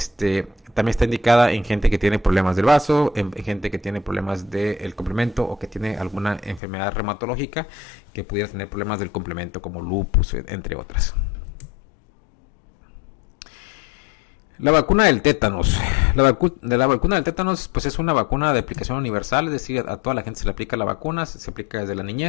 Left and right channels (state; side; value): drops out; right; at 6.6 s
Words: está indicada en gente que tiene problemas del vaso, en gente que tiene problemas del complemento o que tiene alguna enfermedad reumatológica que pudiera tener problemas del complemento como lupus, entre otras. La vacuna del tétanos. La vacuna del tétanos pues es una vacuna de aplicación universal, es decir, a toda la gente se le aplica la vacuna, se aplica desde la